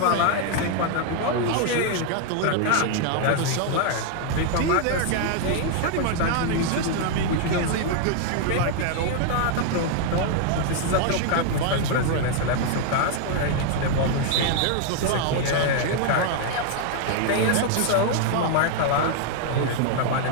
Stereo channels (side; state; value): both; different; correlation 0.00